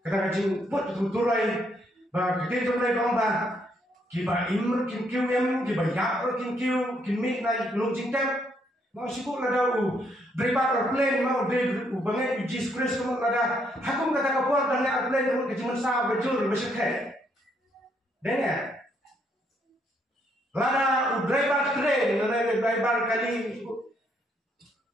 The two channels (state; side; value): normal; both; correlation 0.72